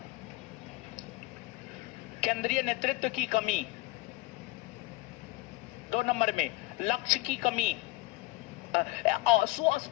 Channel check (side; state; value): right; quieter; 20.6 dB